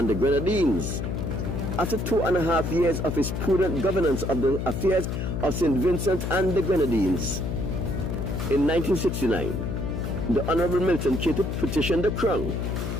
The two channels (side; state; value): left; noise; hum, 3 dB below the sound